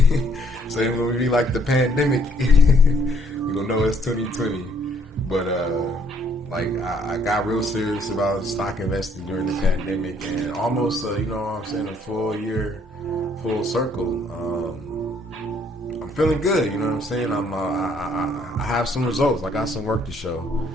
So when we be like the pandemic, we gonna know it's 2020. But like I got real serious about stock investing during the pandemic, and almost you know what I'm saying, a full year, full circle. I'm feeling good, you know what I'm saying. I have some results. I got some work to show,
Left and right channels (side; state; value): both; normal; correlation 0.65